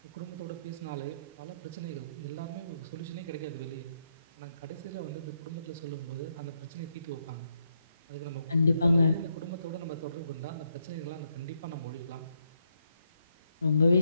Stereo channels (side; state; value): both; inverted; correlation -0.78